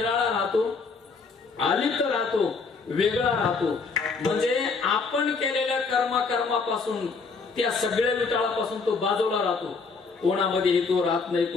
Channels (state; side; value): quieter; right; 4.6 dB